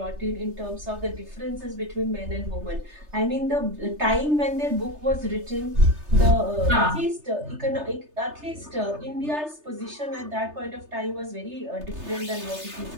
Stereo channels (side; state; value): left; late; 3.3 ms